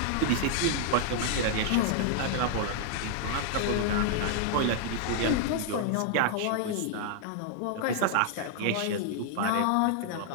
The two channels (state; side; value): different; both; correlation 0.00